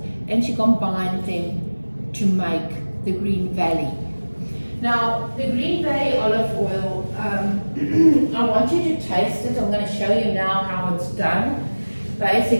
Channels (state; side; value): inverted; both; correlation -1.00